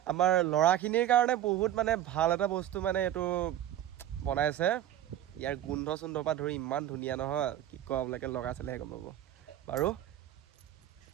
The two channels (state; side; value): quieter; left; 12.0 dB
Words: আমাৰ ল'ৰাখিনিৰ কাৰণে বহুত মানে ভাল এটা বস্তু মানে এইটো বনাইছে। ইয়াৰ গোন্ধ চোন্ধৰ পৰা ধৰি ইমান ধুনীয়া নহয়, কি কওঁ আপোনালোকে লগাই চালেহে গম পাব। বাৰু